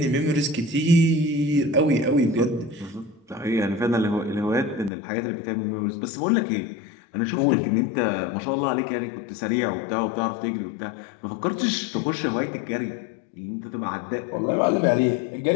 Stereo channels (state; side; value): drops out; right; at 4.9 s